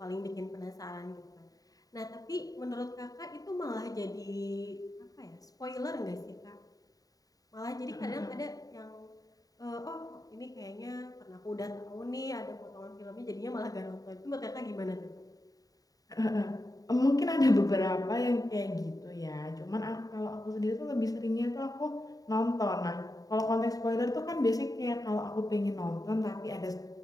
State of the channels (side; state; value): right; late; 0.18 ms